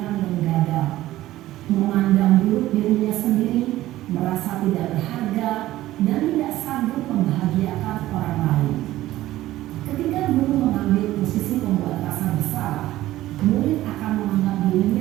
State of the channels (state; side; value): quieter; left; 15.3 dB